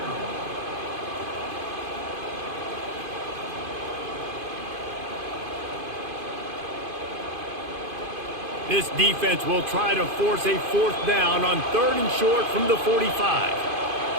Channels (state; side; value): late; left; 2.5 ms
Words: This defense will try to force a 4th down on 3rd and short from the 45.